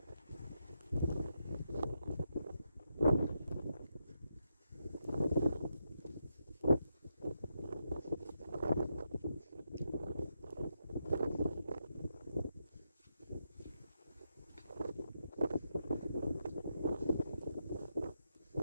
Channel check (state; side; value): inverted; both; correlation -0.83